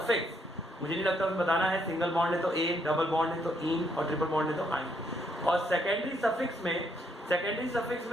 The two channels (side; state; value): both; normal; correlation 0.72